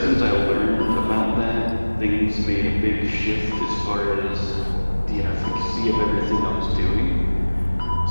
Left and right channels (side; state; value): both; inverted; correlation -1.00